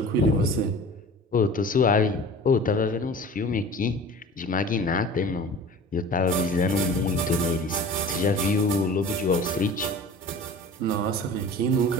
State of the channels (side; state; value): both; normal; correlation 0.40